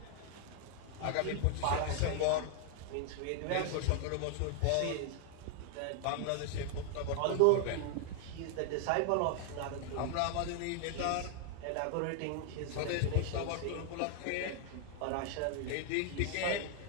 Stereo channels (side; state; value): both; different; correlation 0.00